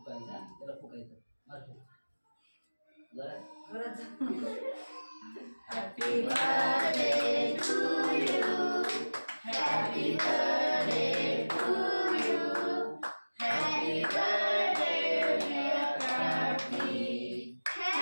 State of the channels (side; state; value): both; inverted; correlation -1.00